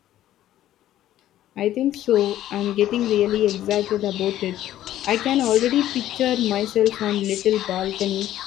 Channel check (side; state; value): right; quieter; 13.0 dB